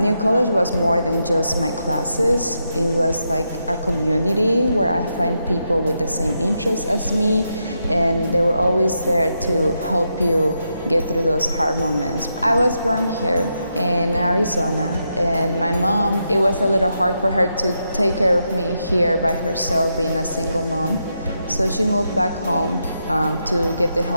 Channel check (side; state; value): both; inverted; correlation -0.83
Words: College was more than just my classes. It was like a community where I find people with the same interests as me, and they were always there to help you get through those hard moments. I was born here in Arizona, and my mom, it was a little hard for her to take care of me here by herself, being a single mom. So she moved back home to get the